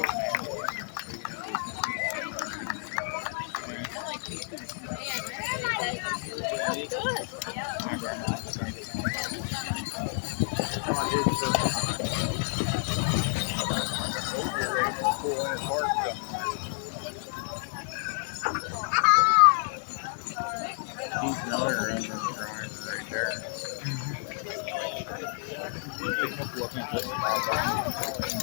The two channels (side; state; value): right; silent; digital silence